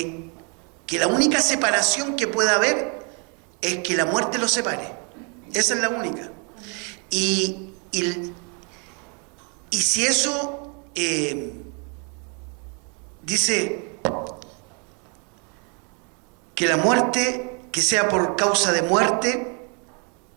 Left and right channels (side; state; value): left; quieter; 36.0 dB